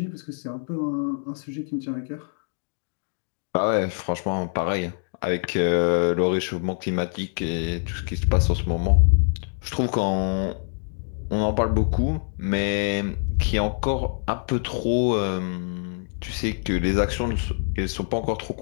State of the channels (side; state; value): right; silent; digital silence